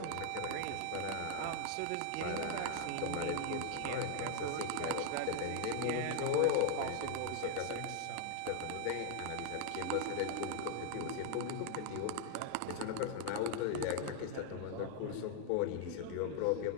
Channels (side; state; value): both; different; correlation 0.00